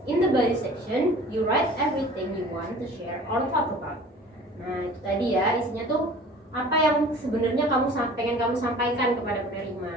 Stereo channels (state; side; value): normal; both; correlation 0.45